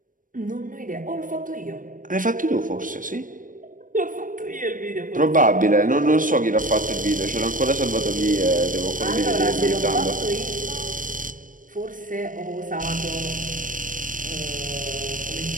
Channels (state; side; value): late; left; 0.39 ms